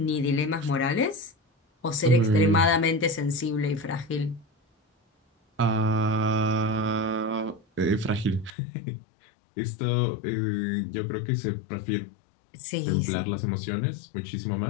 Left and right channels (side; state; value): right; drops out; at 8.5 s